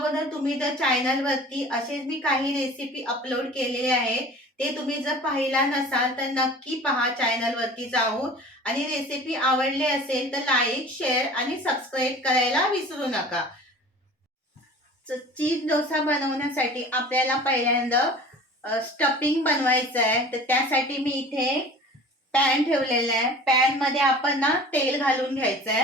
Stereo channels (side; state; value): both; normal; correlation 0.42